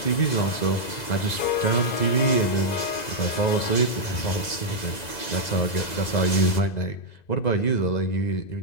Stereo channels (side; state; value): right; late; 2.0 ms